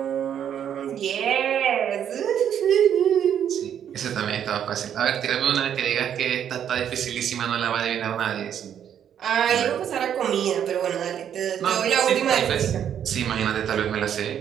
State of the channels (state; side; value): quieter; left; 9.2 dB